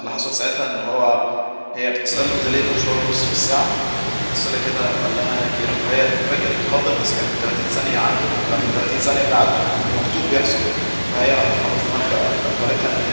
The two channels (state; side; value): inverted; both; correlation -1.00